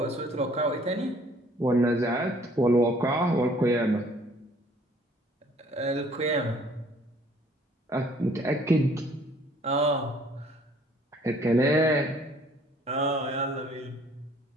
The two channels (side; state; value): both; normal; correlation 0.58